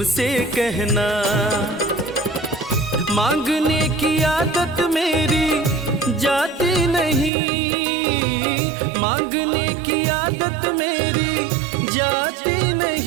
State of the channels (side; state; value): left; drops out; at 7.3 s